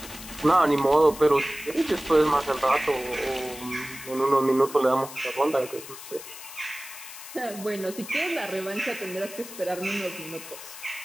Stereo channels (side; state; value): left; noise; hiss, 13 dB below the sound